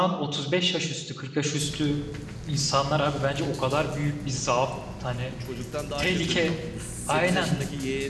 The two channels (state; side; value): identical; both; correlation 1.00